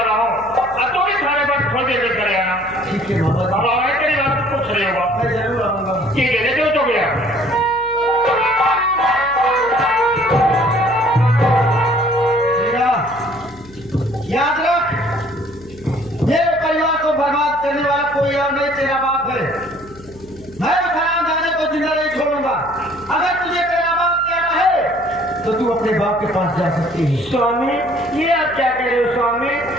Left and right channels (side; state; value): left; noise; hum, 21 dB below the sound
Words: हूँ। अब तो भी थाने पर थोड़ी देर में चले आना। ठीक है मामा जी। अब आगे तेरी बात कुछ नहीं होगा। मैं जरूर आऊंगा। ठीक है, देखो तो गया। बेटा, याद रख, मेरे परिवार को बर्बाद करने वाला कोई और नहीं, तेरा बाप है। मैं उस हरामजादे को जिंदा नहीं छोड़ूंगा। अगर तुझे तेरा बाप कहना है तो तू अपने बाप के पास जा सकती है। स्वामी, ये आप क्या कह रहे हो स्वामी?